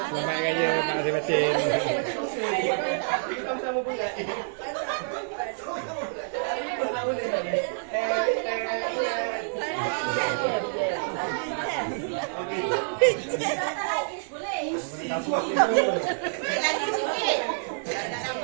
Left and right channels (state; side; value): silent; left; digital silence